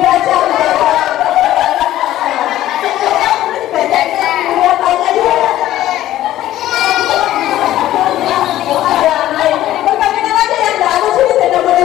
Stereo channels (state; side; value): quieter; right; 13.8 dB